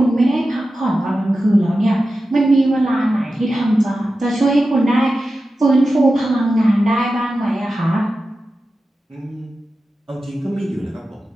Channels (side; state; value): both; normal; correlation 0.93